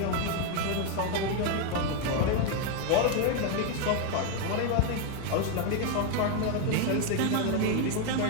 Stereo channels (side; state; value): both; different; correlation 0.01